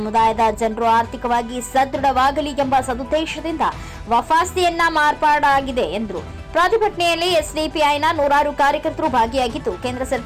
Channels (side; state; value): both; identical; correlation 1.00